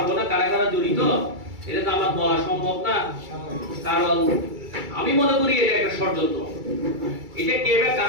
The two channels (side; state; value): left; late; 2.3 ms